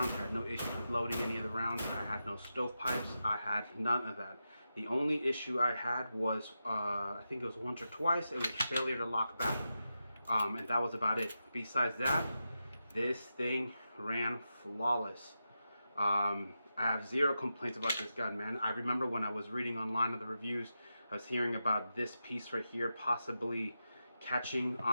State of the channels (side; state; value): both; inverted; correlation -0.89